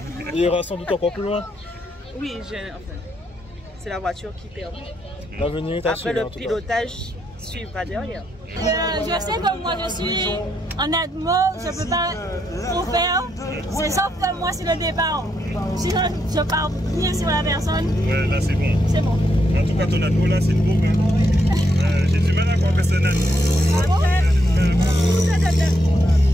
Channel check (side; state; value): both; normal; correlation 0.78